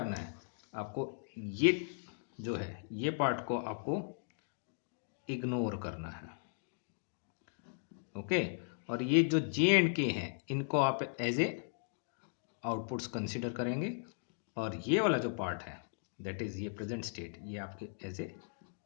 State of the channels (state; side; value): silent; right; digital silence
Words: है, आपको ये जो है ये पार्ट को आपको इग्नोर करना है, ओके। और ये जो जे एंड के हैं इनको आप एज ए आउटपुट्स कंसीडर करेंगे, और ये वाला जो पार्ट है दैट इज ये प्रेजेंट स्टेट, ये आपके एज ए